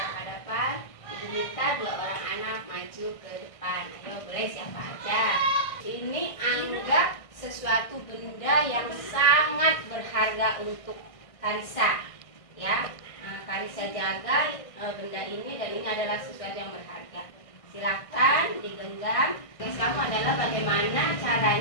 Ibu minta 2 orang anak maju ke depan. Ayo, boleh siapa aja. Ini anggap sesuatu benda yang sangat berharga untuk Karissa, ya. Karissa jaga benda ini, dan ini adalah sesuatu yang berharga. Silakan digenggam. Tugas kamu adalah bagaimana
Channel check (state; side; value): late; right; 1.6 ms